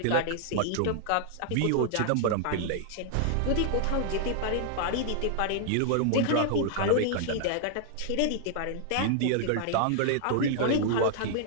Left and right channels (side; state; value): both; different; correlation 0.00